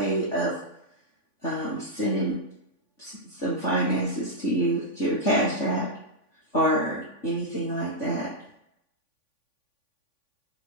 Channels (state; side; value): late; right; 3.5 ms